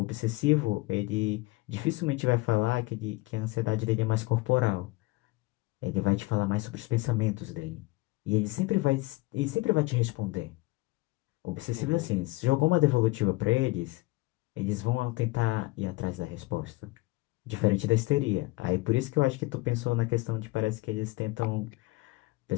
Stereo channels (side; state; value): right; quieter; 21.7 dB